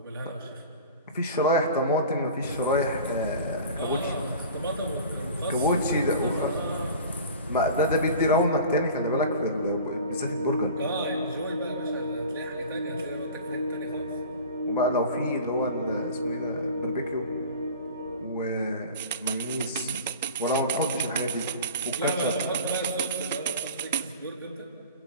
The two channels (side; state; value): both; inverted; correlation -0.39